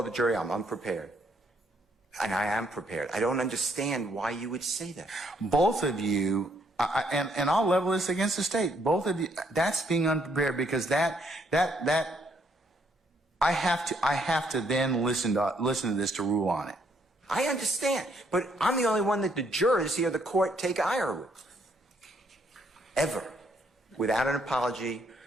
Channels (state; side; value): normal; both; correlation 0.70